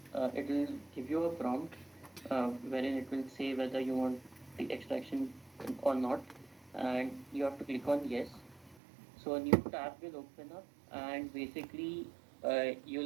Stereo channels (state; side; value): drops out; left; at 8.8 s